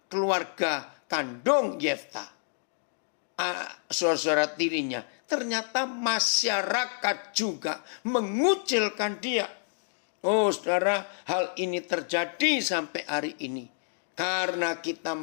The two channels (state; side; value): silent; right; digital silence